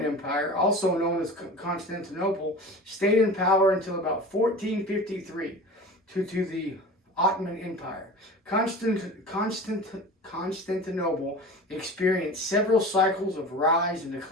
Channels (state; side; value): normal; both; correlation 0.36